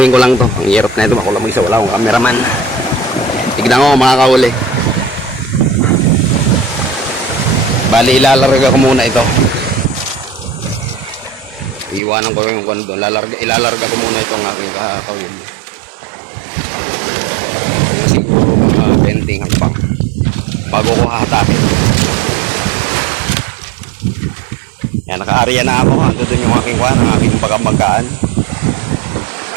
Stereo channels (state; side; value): drops out; left; at 12.0 s